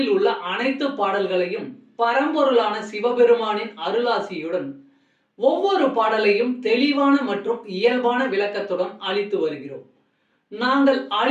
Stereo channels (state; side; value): identical; both; correlation 1.00